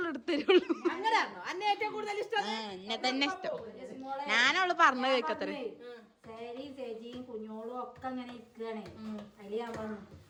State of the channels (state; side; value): identical; both; correlation 1.00